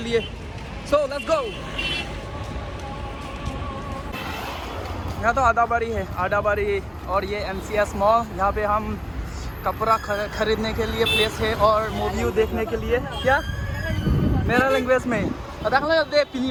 लिए सो लेट्स गो यहाँ तो आदाबारी है आदाबारी और ये MCS मॉल यहाँ पे हम कपड़ा खरीदने के लिए प्लेस है और मूवी देखने के लिए क्या मेरा लैंग्वेज में दाख लो दे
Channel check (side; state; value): both; identical; correlation 1.00